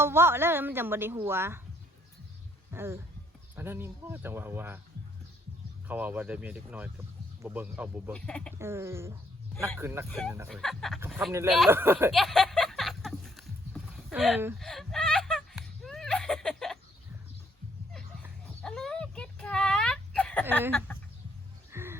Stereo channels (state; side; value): normal; both; correlation 0.69